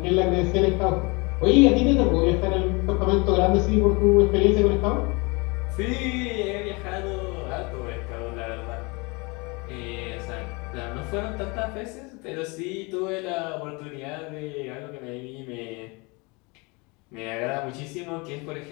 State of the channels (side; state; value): right; quieter; 28.0 dB